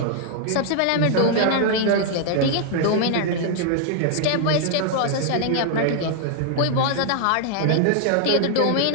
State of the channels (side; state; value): both; different; correlation -0.01